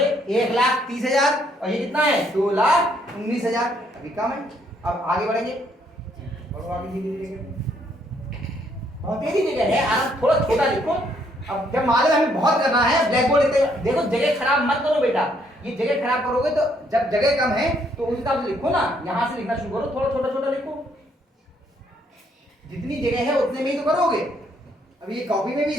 1,30,000, और ये कितना है? 2,19,000। अभी कम है। अब आगे बढ़ेंगे, बढ़ो आगे धीरे धीरे, बहुत तेजी जगह है, आराम, थोड़ा छोटा लिखो। अब जब मालूम हमें बहुत करना है, ब्लैक बोर्ड देखो, जगह खराब मत करो बेटा। ये जगह खराब करोगे तो जब जगह कम है तो उस हिसाब से लिखो ना, यहाँ से लिखना शुरू करो, थोड़ा छोटा छोटा लिखो। जितनी जगह है उतने में ही तो करोगे। अब ये कॉपी में भी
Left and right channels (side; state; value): both; normal; correlation 0.69